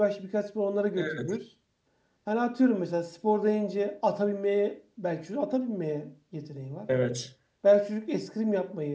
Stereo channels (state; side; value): identical; both; correlation 1.00